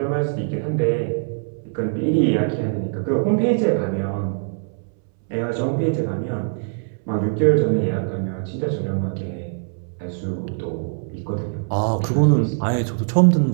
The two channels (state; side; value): silent; left; 64 dB below the other